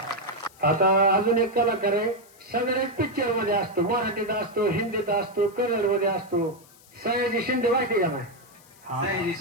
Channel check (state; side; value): noise; left; hiss, 26 dB below the sound